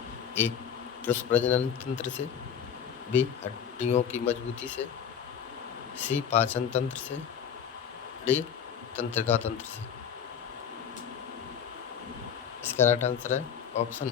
ए. पुरुष प्रजनन तंत्र से। बी. हड्डियों की मजबूती से। सी. पाचन तंत्र से। डी. तंत्रिका तंत्र से। इसका राइट आंसर है ऑप्शन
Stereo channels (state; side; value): quieter; right; 8.1 dB